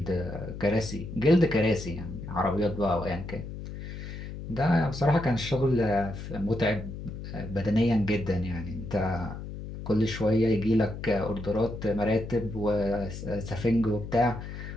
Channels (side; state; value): left; noise; hum, 9 dB below the sound